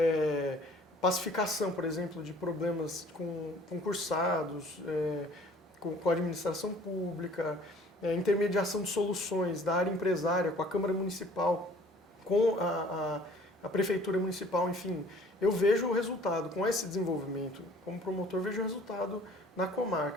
pacificação, por exemplo, de problemas com concursados, com a administração pública, intermediação de soluções da área empresária com a Câmara Municipal, com a Prefeitura Municipal, enfim. Eu vejo o resultado, com esse desenvolvimento, como promotor, vejo o resultado na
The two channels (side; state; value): both; normal; correlation 0.53